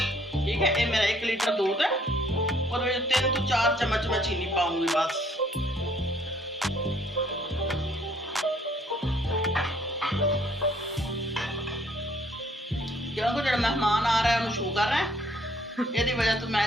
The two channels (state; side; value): normal; both; correlation 0.63